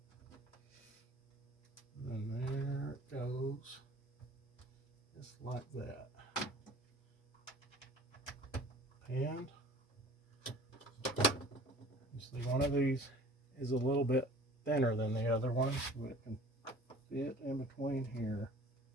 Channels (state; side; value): normal; both; correlation 0.46